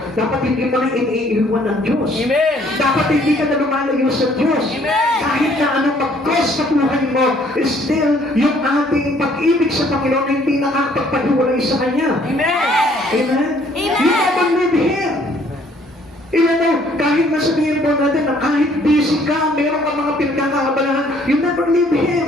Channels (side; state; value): both; normal; correlation 0.61